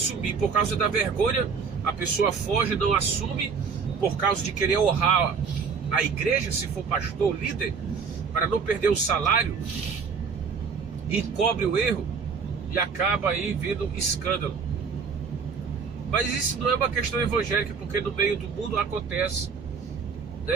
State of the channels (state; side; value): quieter; left; 5.7 dB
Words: por causa da vergonha. A pessoa foge, não assume por causa de querer honrar a igreja, se for pastor, líder, para não perder o salário, encobre o erro e acaba aí vindo escândalo. Mas isso não é uma questão evangélica, porque no meio do mundo acontece,